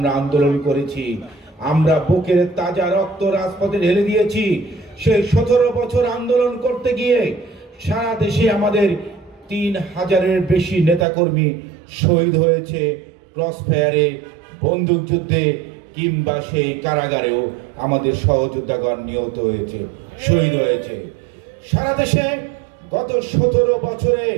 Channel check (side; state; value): left; drops out; at 11.1 s